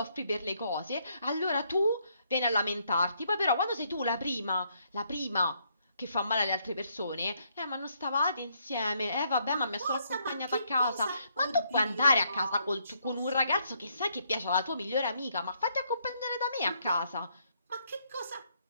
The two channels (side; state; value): both; inverted; correlation -0.73